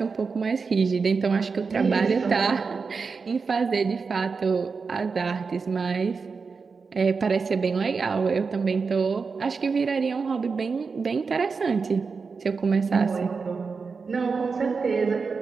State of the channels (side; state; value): left; quieter; 4.9 dB